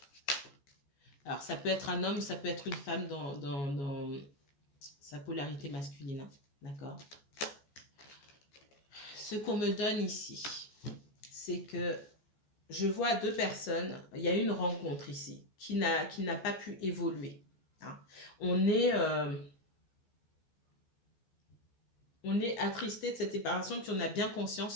Alors, ça peut être un homme, ça peut être une femme dans sa polarité masculine. Hein. D'accord? Ce qu'on me donne ici, c'est que je vois deux personnes, il y a une rencontre ici qui n'a pas pu évoluer. Hein. On est attristé de cette séparation, puis on a bien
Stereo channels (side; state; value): right; late; 14 ms